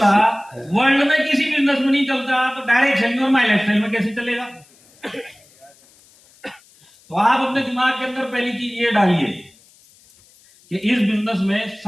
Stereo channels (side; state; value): left; noise; hiss, 29 dB below the sound